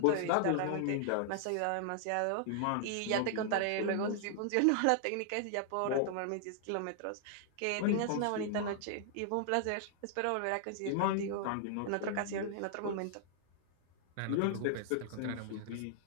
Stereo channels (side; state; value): both; different; correlation -0.01